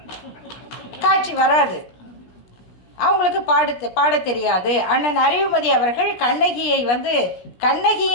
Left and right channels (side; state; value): right; late; 17 ms